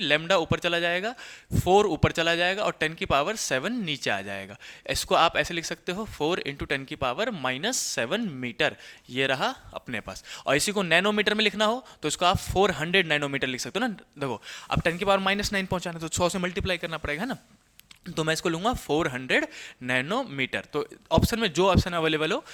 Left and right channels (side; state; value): both; identical; correlation 1.00